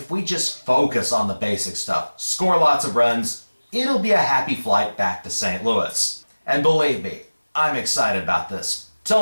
we just focus on the basic stuff, score lots of runs, it'll be a happy flight back to St. Louis. And believe me, I'm excited about this.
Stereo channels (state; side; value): inverted; both; correlation -1.00